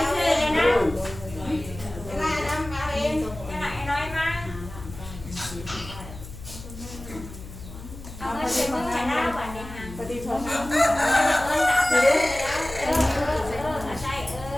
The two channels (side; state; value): left; noise; hum, 14 dB below the sound